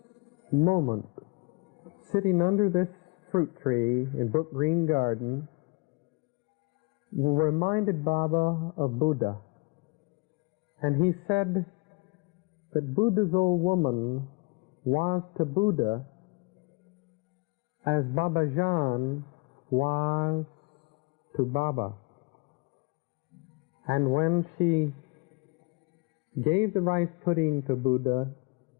moment, sitting under this fruit tree in Brook Green Garden, reminded Baba of Buddha. And he said that Buddha's old woman was to Buddha as Babajan was to Baba. And when she gave the rice pudding to Buddha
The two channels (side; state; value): right; quieter; 29.0 dB